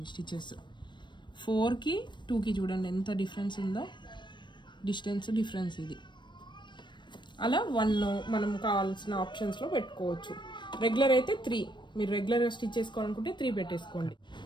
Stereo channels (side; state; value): right; late; 0.22 ms